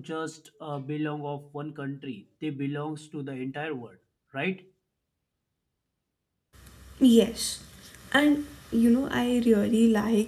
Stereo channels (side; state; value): both; identical; correlation 1.00